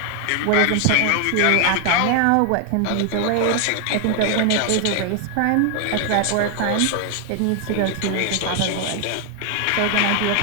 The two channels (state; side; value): different; both; correlation 0.00